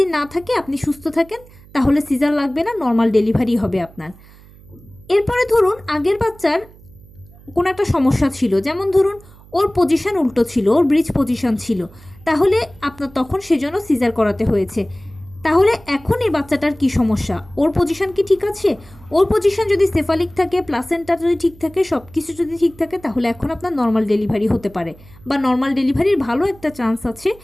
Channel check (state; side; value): noise; right; hum, 23 dB below the sound